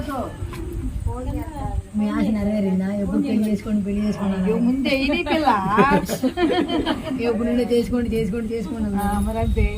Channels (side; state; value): both; identical; correlation 1.00